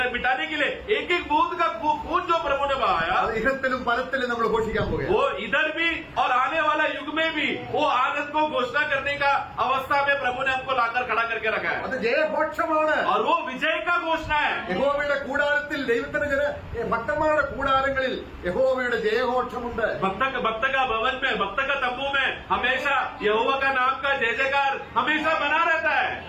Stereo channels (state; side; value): identical; both; correlation 1.00